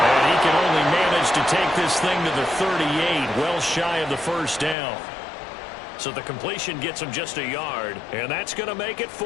he can only manage to take this thing to the 38, well shy of the first down. So the completion gets him just a yard, and that's going to make it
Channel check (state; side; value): drops out; right; at 4.8 s